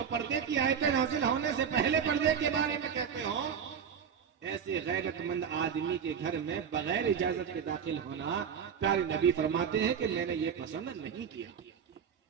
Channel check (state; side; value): quieter; left; 7.4 dB